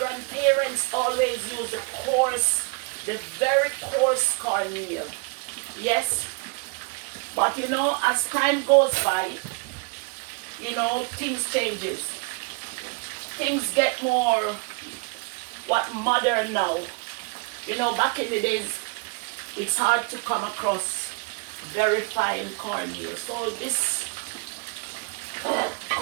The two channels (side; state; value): left; quieter; 32.3 dB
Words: always use the very coarse cornmeal. Yes. But you know, as time goes by, you know, things changes. Things get more modern now. You know, back in the days, it's hard to come across very fine cornmeal. So this